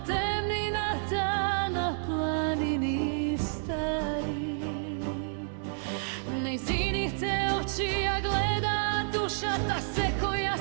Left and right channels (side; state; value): left; silent; digital silence